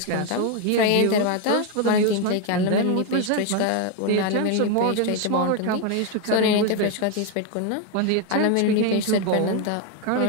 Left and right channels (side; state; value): both; different; correlation 0.01